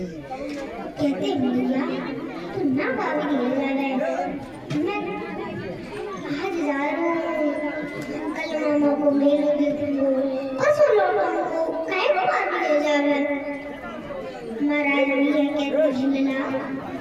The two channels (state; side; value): identical; both; correlation 1.00